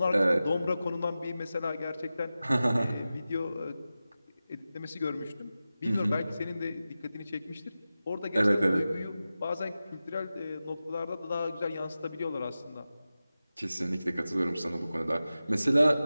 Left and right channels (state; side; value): inverted; both; correlation -0.94